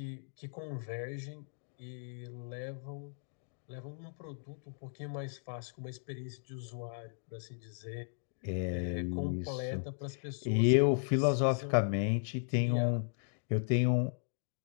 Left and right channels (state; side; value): silent; right; digital silence